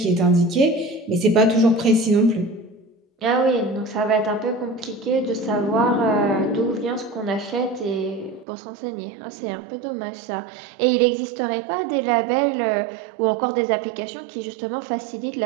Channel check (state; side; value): drops out; left; at 8.5 s